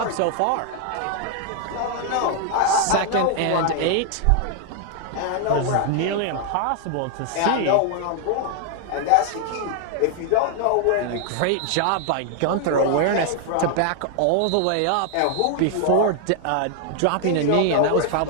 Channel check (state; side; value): different; both; correlation 0.00